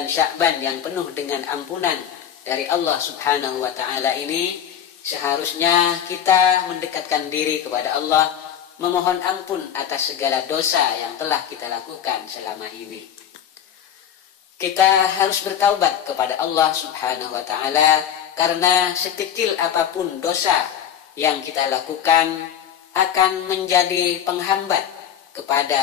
Sya'ban yang penuh dengan ampunan dari Allah Subhanahu wa ta'ala ini, seharusnya kita mendekatkan diri kepada Allah, memohon ampun atas segala dosa yang telah kita lakukan selama ini. Kita harus bertaubat kepada Allah Subhanahu wa ta'ala, karena sekecil apapun dosa yang kita lakukan akan menjadi penghambat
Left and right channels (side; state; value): right; quieter; 9.2 dB